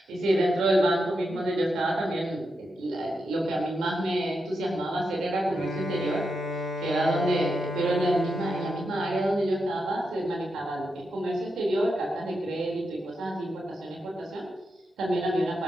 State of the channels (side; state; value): both; normal; correlation 0.86